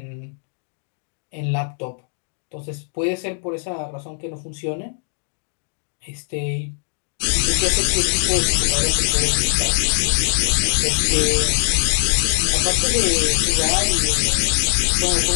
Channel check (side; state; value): right; silent; digital silence